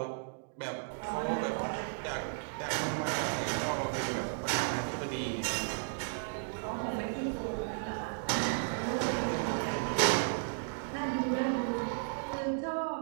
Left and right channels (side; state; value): left; silent; digital silence